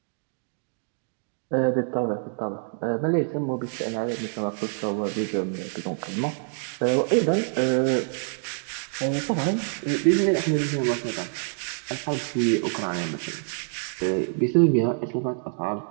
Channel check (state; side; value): silent; left; 61 dB below the other